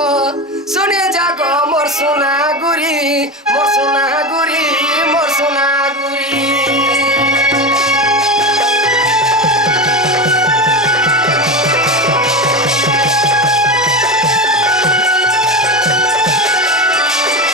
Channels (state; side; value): normal; both; correlation 0.21